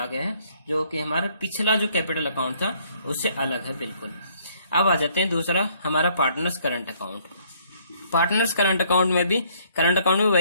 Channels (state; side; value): inverted; both; correlation -0.64